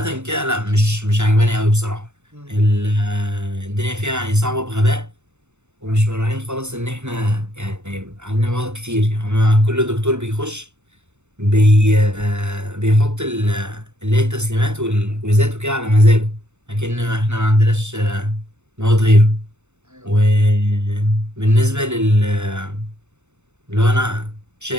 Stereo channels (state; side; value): late; left; 0.83 ms